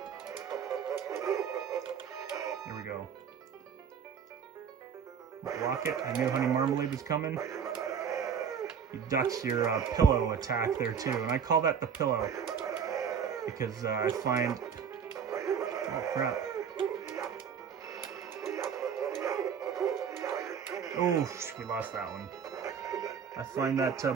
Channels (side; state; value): left; quieter; 7.2 dB